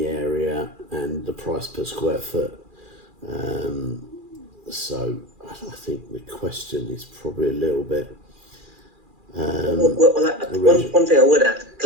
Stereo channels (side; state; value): left; late; 2.4 ms